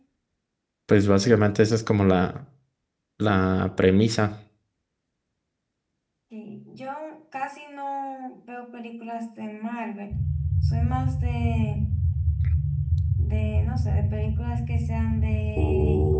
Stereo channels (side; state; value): both; identical; correlation 1.00